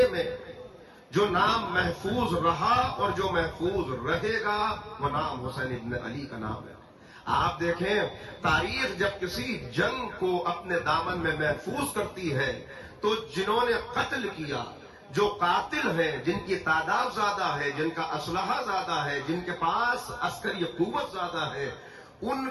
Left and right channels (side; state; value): both; identical; correlation 1.00